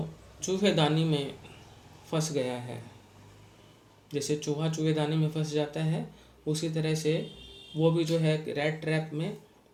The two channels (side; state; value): both; identical; correlation 1.00